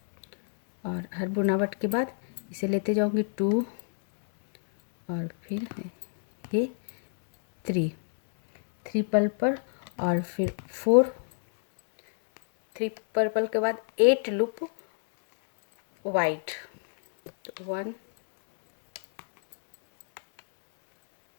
और हर बुनावट के बाद इसे लेते जाऊंगी 2 और फिर ये 3 पर्पल और फिर 4 3 पर्पल के बाद 8 लूप वाइट। 1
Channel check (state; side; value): silent; right; digital silence